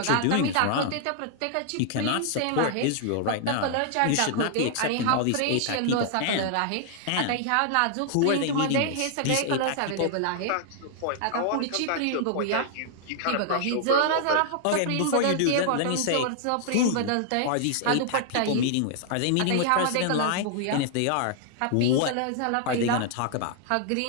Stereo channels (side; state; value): both; different; correlation -0.01